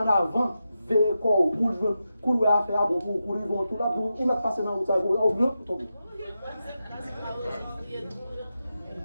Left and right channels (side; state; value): both; inverted; correlation -0.89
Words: avant, veillez quoi, pour le faire, bon, pour ils vont tout là, pour ils mettent passer dans le temps, au bleu, pour tomber.